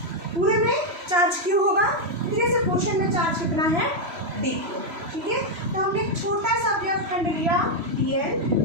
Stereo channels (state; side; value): late; left; 3.0 ms